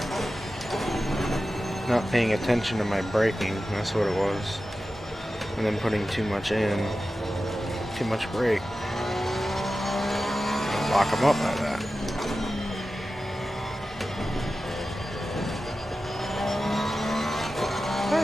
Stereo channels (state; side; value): normal; both; correlation 0.93